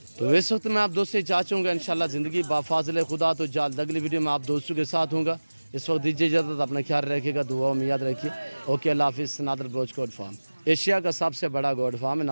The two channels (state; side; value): inverted; both; correlation -1.00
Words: تو اس وقت میں آپ دوست سے چاہوں گا انشاءاللہ زندگی بافاضل خدا تو جلد اگلی ویڈیو میں آپ دوستوں کے ساتھ ہوں گا. اس وقت دیجیے اجازت، اپنا خیال رکھیے گا، دعاؤں میں یاد رکھیے. اوکے، اللہ حافظ. نادر بلوچ گوڈ فارم ایشیا کا سب سے بڑا گوڈ فارم ہے